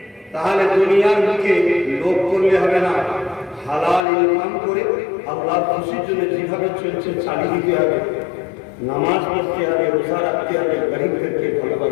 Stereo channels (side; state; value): right; drops out; at 4.0 s